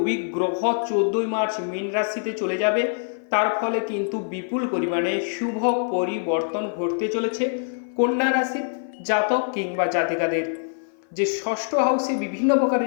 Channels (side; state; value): right; silent; 56 dB below the other